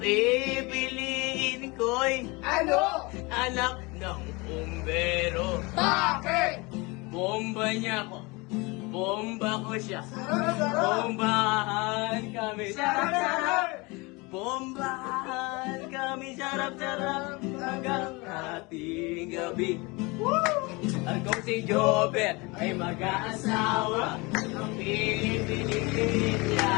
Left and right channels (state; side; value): quieter; right; 26.0 dB